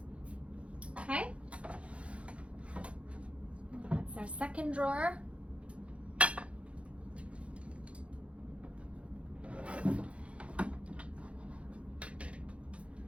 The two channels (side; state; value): left; late; 0.061 ms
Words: Okay. That's our second drawer.